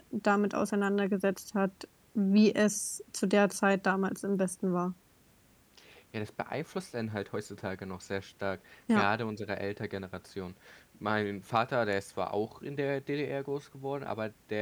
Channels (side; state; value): both; identical; correlation 1.00